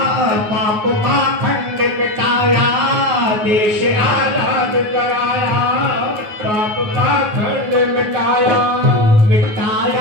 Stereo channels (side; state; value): left; late; 9.4 ms